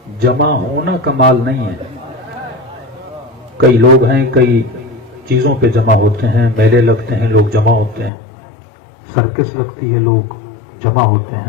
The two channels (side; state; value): right; drops out; at 8.1 s